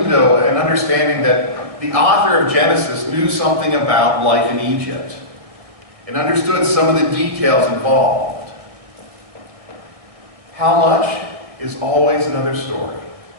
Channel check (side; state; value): left; late; 1.7 ms